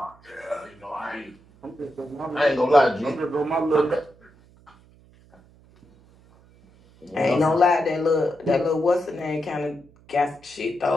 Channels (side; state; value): right; noise; hum, 28 dB below the sound